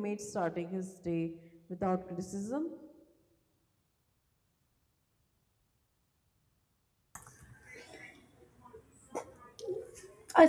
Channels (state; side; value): identical; both; correlation 1.00